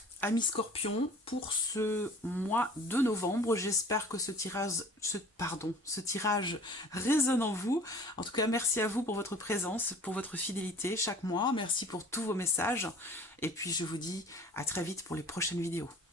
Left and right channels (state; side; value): normal; both; correlation 0.46